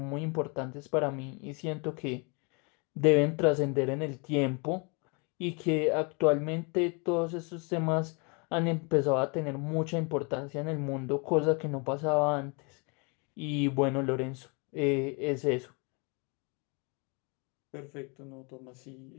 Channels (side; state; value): right; quieter; 32.4 dB